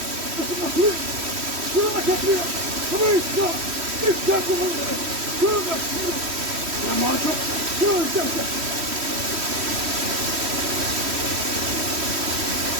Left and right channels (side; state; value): left; late; 3.1 ms